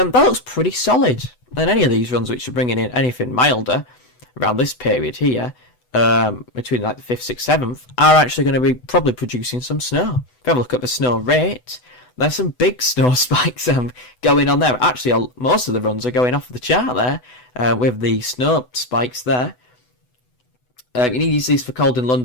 looks pretty solid. And any of these runs which are bringing in anything milder around this period here, between like the 5th, 6th, 7th, are actually going to be probably producing some snow. If you have a look at the snow rate, there's some big snow spikes going on there. Actually, most of the runs are going off the chart there, with the snow spikes there. You need to use these for cold in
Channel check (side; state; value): right; late; 8.0 ms